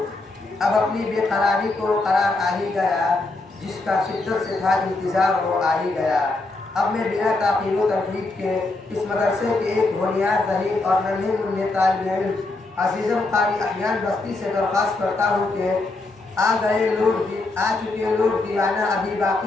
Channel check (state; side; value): quieter; right; 3.2 dB